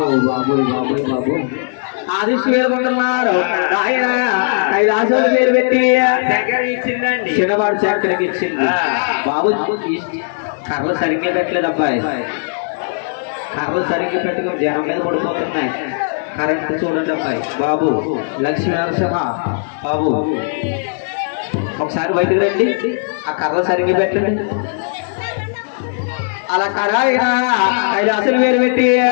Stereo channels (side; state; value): right; silent; 63 dB below the other